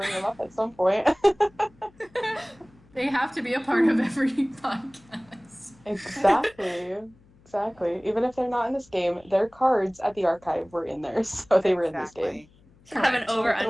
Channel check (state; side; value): noise; left; hum, 29 dB below the sound